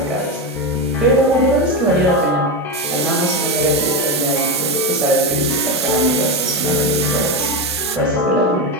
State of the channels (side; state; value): both; normal; correlation 0.14